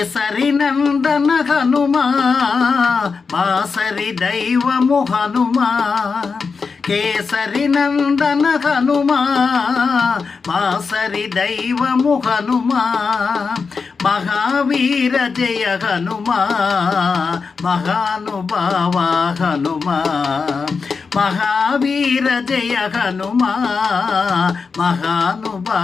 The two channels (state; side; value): quieter; right; 5.0 dB